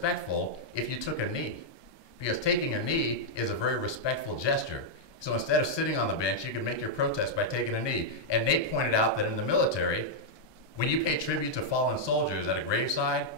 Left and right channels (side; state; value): right; late; 1.2 ms